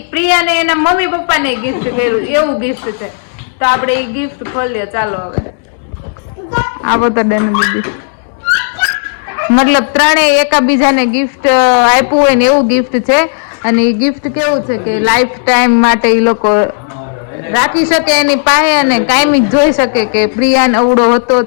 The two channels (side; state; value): right; silent; digital silence